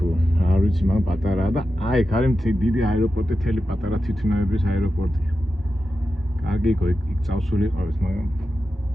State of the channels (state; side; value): normal; both; correlation 0.91